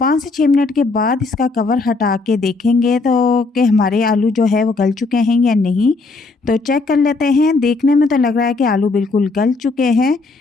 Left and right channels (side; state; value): right; quieter; 3.8 dB